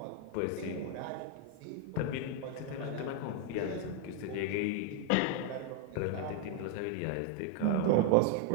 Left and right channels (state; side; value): different; both; correlation 0.00